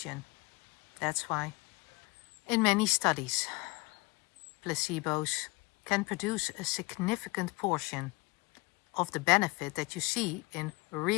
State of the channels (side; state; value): right; quieter; 25.2 dB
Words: That's why. In many studies, placebos can produce a significant portion of the benefit that you see in